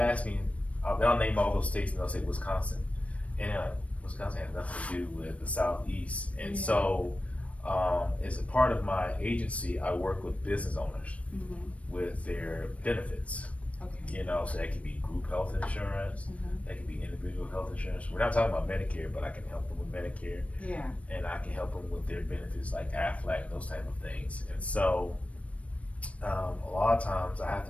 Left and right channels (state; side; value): late; right; 0.064 ms